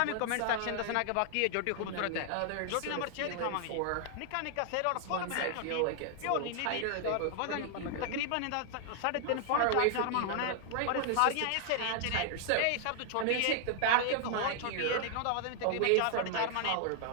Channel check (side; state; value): both; different; correlation 0.00